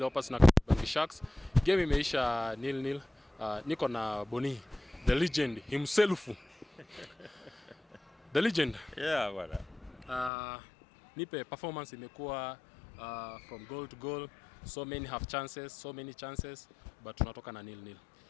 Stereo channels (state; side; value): drops out; right; at 10.3 s